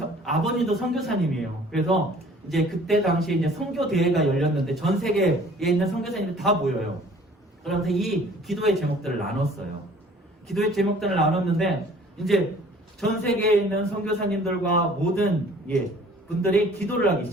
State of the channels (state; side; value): normal; both; correlation 0.52